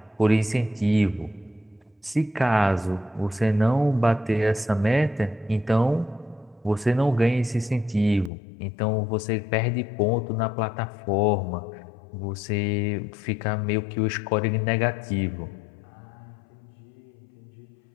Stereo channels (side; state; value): right; drops out; at 8.3 s